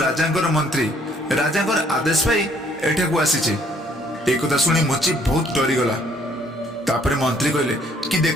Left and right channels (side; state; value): both; normal; correlation 0.63